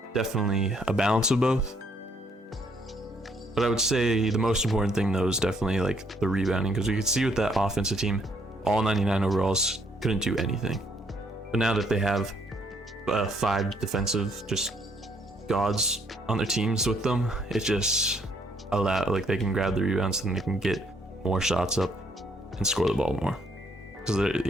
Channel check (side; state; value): both; normal; correlation 0.69